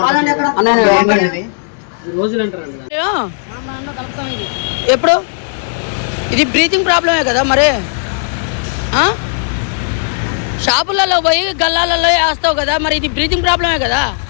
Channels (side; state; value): right; silent; digital silence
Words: ఎప్పుడు ఇది బ్రీతింగ్ ప్రాబ్లమే కదా మరి. షాపులలో పోయి గల్లాలలో వేస్తావు కదా మరి, ఇది బ్రీతింగ్ ప్రాబ్లమే కదా.